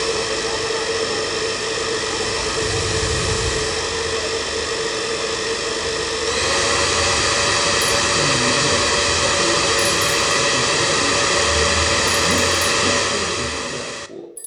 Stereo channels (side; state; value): both; identical; correlation 1.00